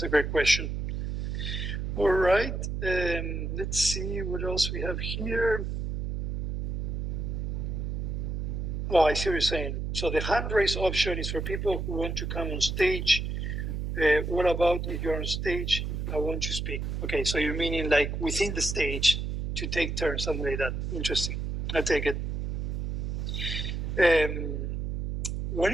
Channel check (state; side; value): noise; right; hum, 2 dB below the sound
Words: a great question. All right, let's see what else we have here. Oh, I see what you're saying. So the hand raise option is for people who want to come on stage. What about if you're on stage, I want to speak? Okay, so you're meaning like within the stage to take turns, something like that. Interesting. I take it. When